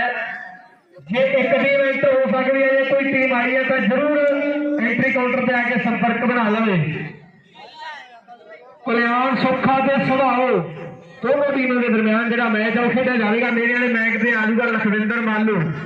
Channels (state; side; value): identical; both; correlation 1.00